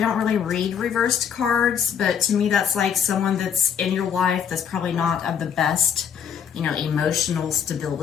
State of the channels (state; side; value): quieter; right; 7.8 dB